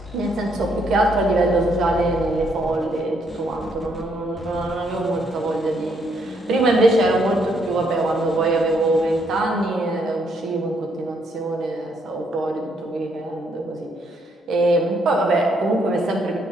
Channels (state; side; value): normal; both; correlation 0.72